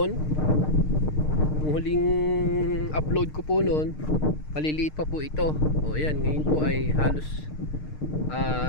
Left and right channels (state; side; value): late; right; 6.6 ms